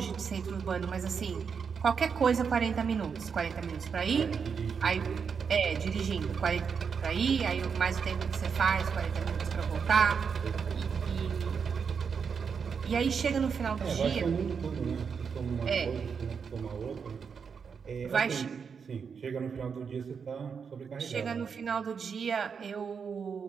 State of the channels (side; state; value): left; quieter; 6.2 dB